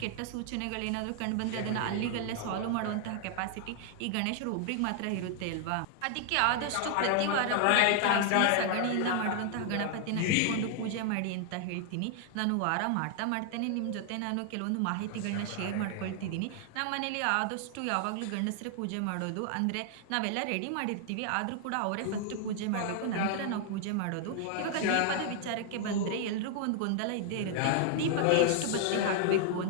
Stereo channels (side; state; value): both; different; correlation 0.00